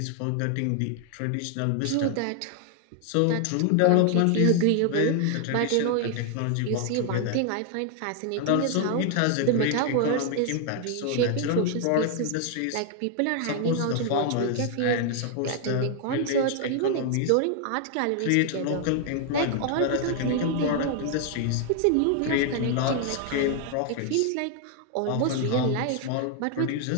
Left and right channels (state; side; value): different; both; correlation 0.00